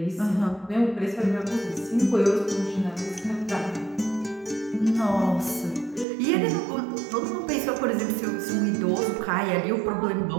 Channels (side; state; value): left; drops out; at 6.1 s